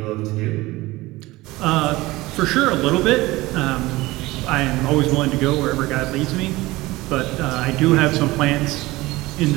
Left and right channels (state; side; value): quieter; left; 19.7 dB